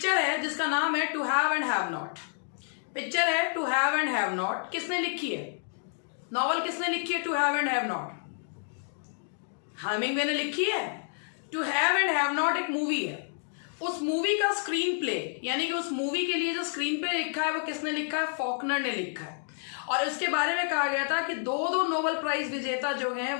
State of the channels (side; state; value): right; silent; 58 dB below the other